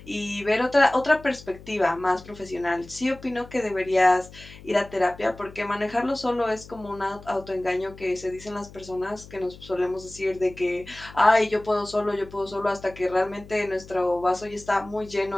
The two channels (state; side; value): noise; left; hum, 19 dB below the sound